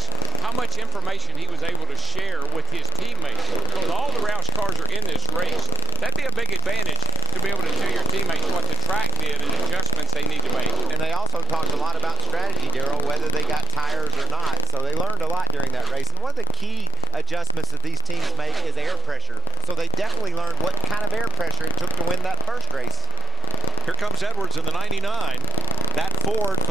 how much information he was able to share with his teammates. Because all the Roush cars are in this race. That'd be a big advantage to be able to tell your teammates what the track did and adjustments they need to make. And they also talked a lot about strategy, Daryl, whether they got tires or not. So they learned a lot during that race. And one of the key adjustments that these teams make is air pressure. So they definitely learned what kind of air pressure it took to win that first race. Here comes Edwards in the 99. That Ford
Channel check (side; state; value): both; normal; correlation 0.17